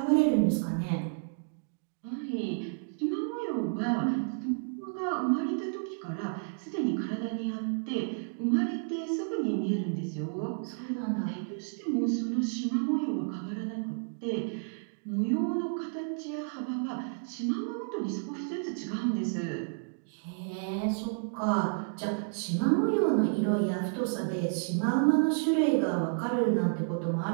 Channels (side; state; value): left; silent; digital silence